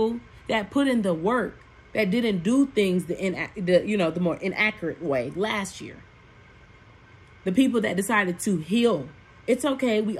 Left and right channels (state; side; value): identical; both; correlation 1.00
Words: that put in the work, that didn't do things the more inaccurate way last year. The people that decided to heal. It's okay. We